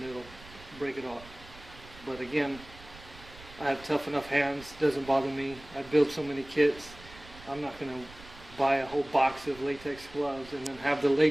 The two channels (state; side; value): noise; right; rumble, 19 dB below the sound